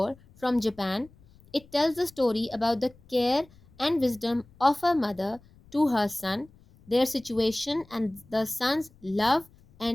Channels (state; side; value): noise; left; rumble, 27 dB below the sound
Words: from Japan. It tells the story about the care and wisdom of a mother to her son, their situation, and the son's love